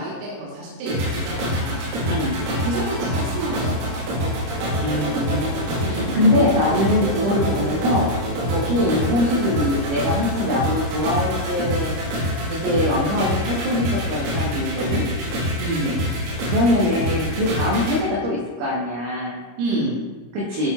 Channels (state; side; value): late; left; 26 ms